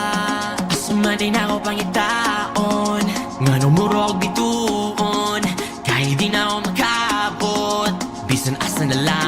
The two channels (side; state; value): both; identical; correlation 1.00